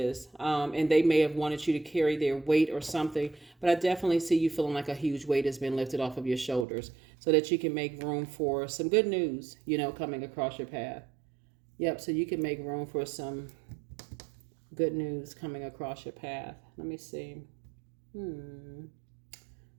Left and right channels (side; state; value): left; drops out; at 6.7 s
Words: and they may have wanted you to carry their weight or something. But I definitely see you feeling like a huge weight has been lifted off of your shoulders so that you can make room for some good news, you know, coming across your path. Yep, so you can make room for some good news coming across your path. Let me see.